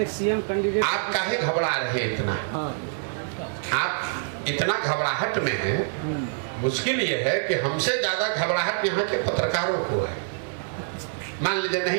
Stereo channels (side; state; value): left; silent; 61 dB below the other